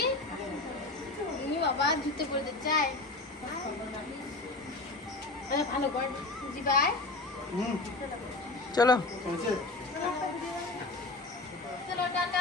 তুমি বাবা জুতে পড়তে চাই, ভালো কর জিবাই। চলো চলো টাটা,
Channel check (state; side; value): quieter; right; 3.2 dB